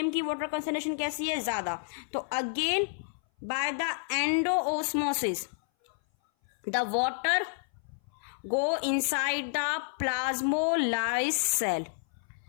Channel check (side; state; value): right; silent; 57 dB below the other